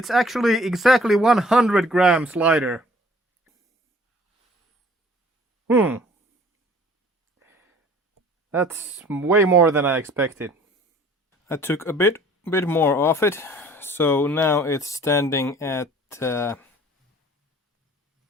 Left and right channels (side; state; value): both; normal; correlation 0.53